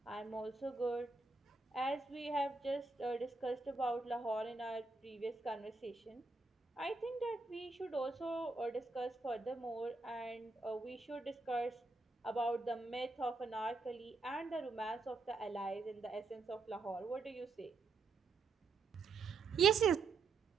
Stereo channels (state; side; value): quieter; left; 3.9 dB